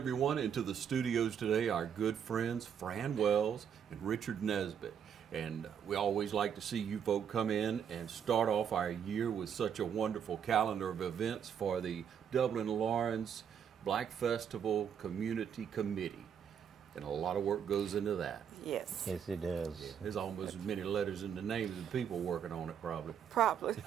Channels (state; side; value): quieter; left; 8.1 dB